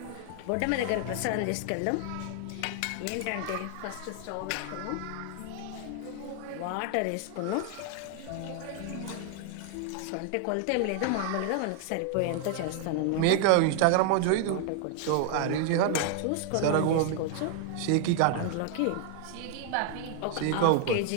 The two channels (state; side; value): different; both; correlation 0.00